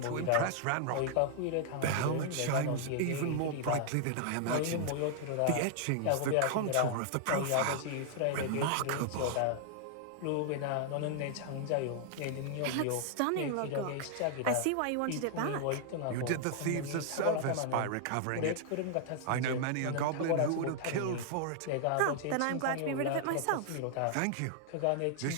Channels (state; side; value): different; both; correlation -0.01